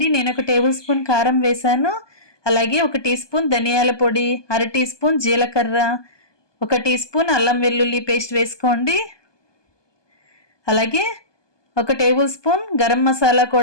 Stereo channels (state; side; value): late; right; 1.2 ms